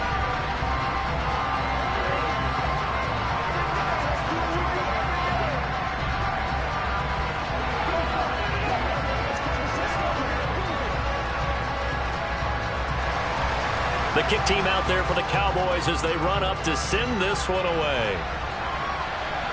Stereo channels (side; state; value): both; identical; correlation 1.00